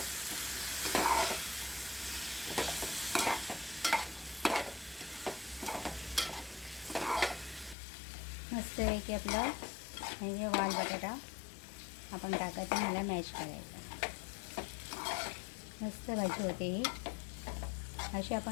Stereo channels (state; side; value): drops out; right; at 7.8 s